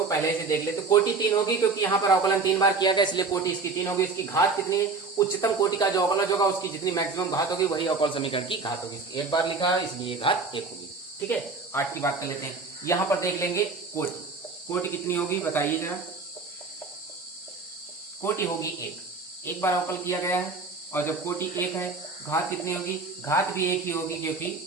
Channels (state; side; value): quieter; left; 4.1 dB